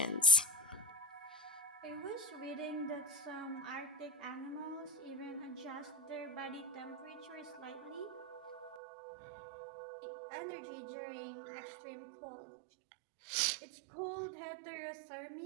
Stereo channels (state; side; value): drops out; left; at 8.8 s